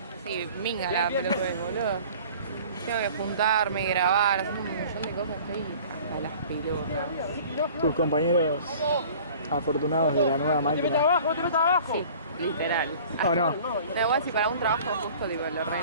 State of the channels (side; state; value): both; inverted; correlation -0.46